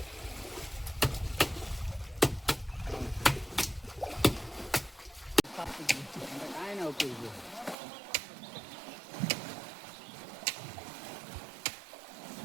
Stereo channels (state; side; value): drops out; left; at 7.8 s